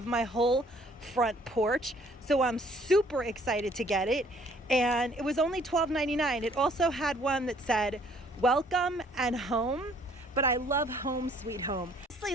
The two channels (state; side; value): normal; both; correlation 0.60